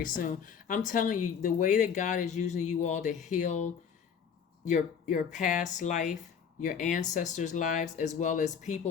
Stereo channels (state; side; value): quieter; right; 7.2 dB